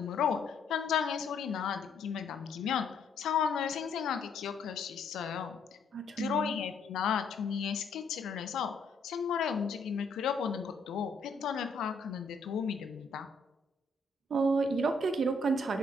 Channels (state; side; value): quieter; right; 3.3 dB